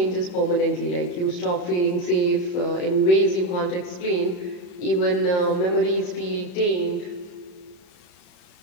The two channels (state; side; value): late; right; 34 ms